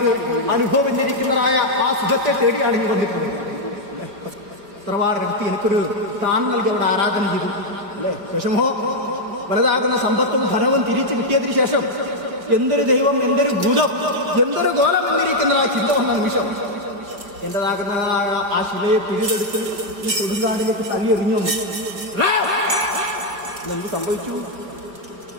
അനുഭവന്നിരിക്കുന്നതായ ആ സുഖത്തെ തേടിയാണ് ഇനി വന്നിട്ടുള്ളത്. തറവാടിനകത്ത് എനിക്കൊരു സ്ഥാനം നൽകി അവിടെ ആരാധന ചെയ്തു അല്ലേ. വിഷമോ വലുതാകുന്ന സമ്പത്തും ധനവും തിരിച്ചു കിട്ടിയതിനു ശേഷം എന്തൊരു ദൈവം, എന്തൊരു ഭൂതം, എന്തൊരു ഗോളം എന്നിരിക്കുന്നതായ ചിന്ത വന്ന നിമിഷം എന്റേതാകുന്നതായ ആ ശിലയെ പിഴുതെടുത്ത് ഈ കൊടുങ്കാടിലേക്ക് തള്ളിയെറിഞ്ഞു. എന്ത് സംഭവിച്ചു?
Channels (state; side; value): late; left; 4.9 ms